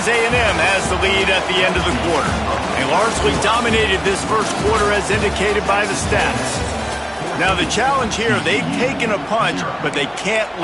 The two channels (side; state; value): both; identical; correlation 1.00